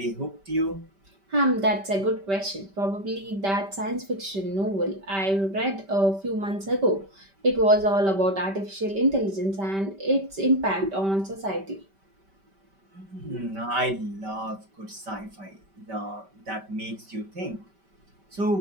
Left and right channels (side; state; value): left; late; 5.1 ms